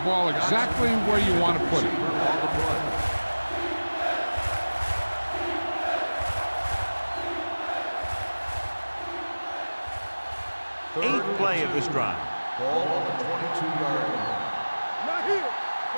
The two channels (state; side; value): inverted; both; correlation -1.00